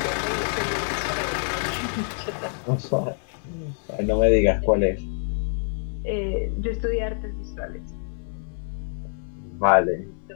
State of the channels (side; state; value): right; silent; 61 dB below the other